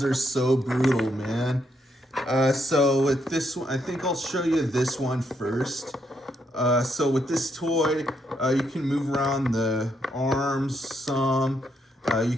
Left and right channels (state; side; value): normal; both; correlation 0.76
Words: are so brutal, man. So with this one, I think I'll show you this one first. So with this toy, you can move around the arms some. You